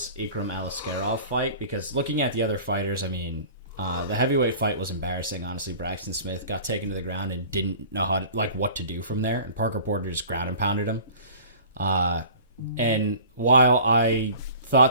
Ikram Aliskerov fight, because looking at the other fighters, the heavyweight fight was embarrassing. Honestly, Braxton Smith got taken to the ground and didn't know what to do from there, and Parker Porter just ground and pounded him. And while I thought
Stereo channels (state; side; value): inverted; both; correlation -0.43